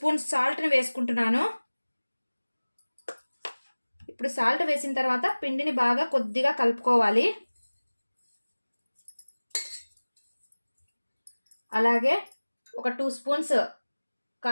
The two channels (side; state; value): both; inverted; correlation -1.00